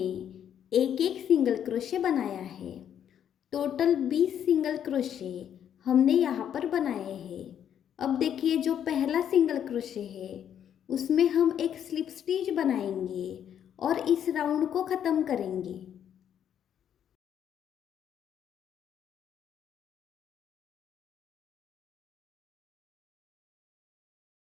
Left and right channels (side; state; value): right; quieter; 9.4 dB